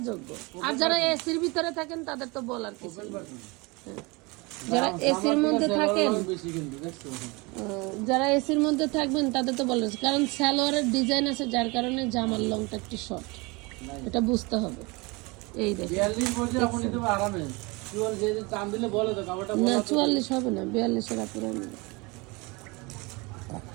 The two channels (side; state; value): left; quieter; 26.3 dB